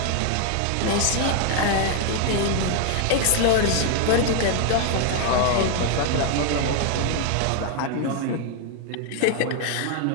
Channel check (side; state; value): both; different; correlation 0.00